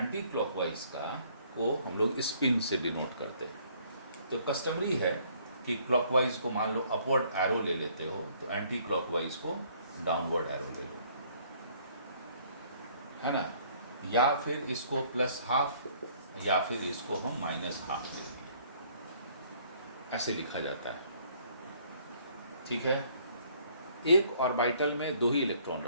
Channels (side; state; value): both; inverted; correlation -0.61